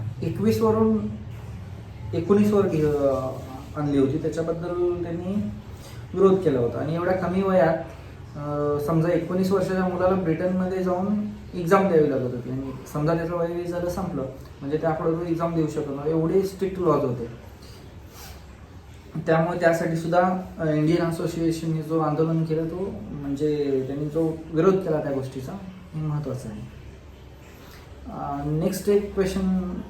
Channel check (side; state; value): both; identical; correlation 1.00